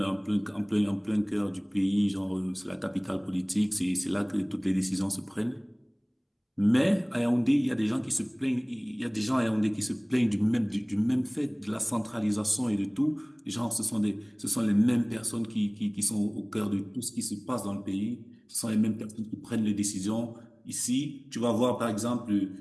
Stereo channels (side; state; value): both; identical; correlation 1.00